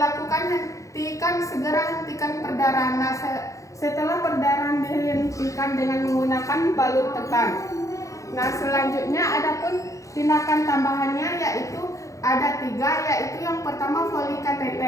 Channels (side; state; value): right; late; 0.15 ms